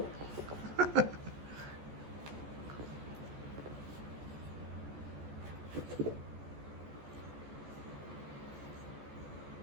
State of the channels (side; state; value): left; late; 14 ms